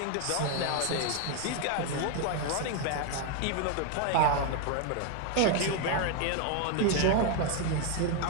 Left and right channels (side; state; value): both; different; correlation 0.01